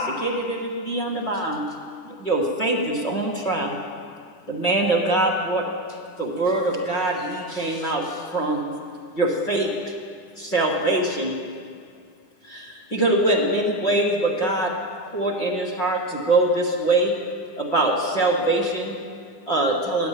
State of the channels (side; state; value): right; late; 10 ms